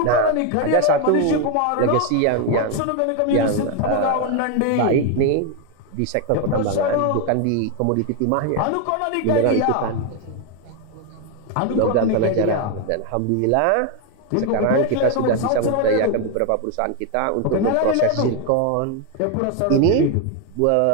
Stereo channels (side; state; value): both; different; correlation 0.01